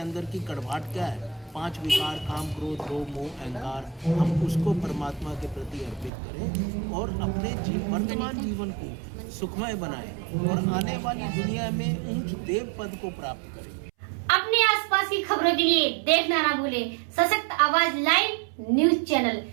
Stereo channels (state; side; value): drops out; left; at 6.1 s